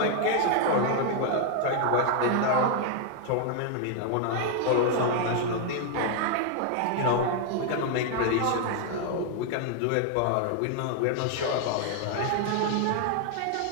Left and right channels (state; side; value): different; both; correlation 0.00